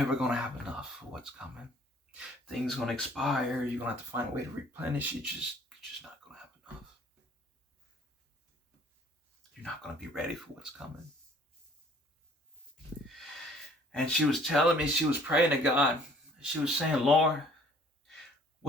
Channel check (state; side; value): normal; both; correlation 0.56